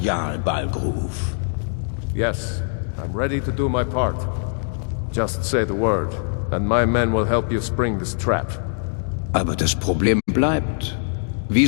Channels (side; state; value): right; silent; digital silence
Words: Jarl Balgruf. Yes, I'm ready to do my part. Just say the word, and my men will help you spring this trap. Aber das Problem bleibt. Wie